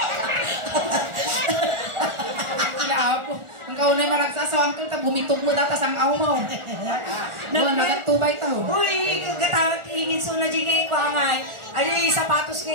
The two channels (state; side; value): late; left; 1.4 ms